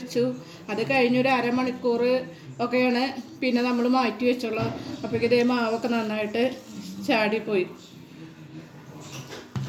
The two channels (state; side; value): identical; both; correlation 1.00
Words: അത് കഴിഞ്ഞൊരു 1/2 മണിക്കൂർ ഒക്കെയാണ് പിന്നെ നമ്മൾ മാറ്റി വെച്ചുള്ളൂ. അപ്പോഴേക്കും ഇതേ മാവൊക്കെ നന്നായിട്ട് ചാടിപ്പോയി.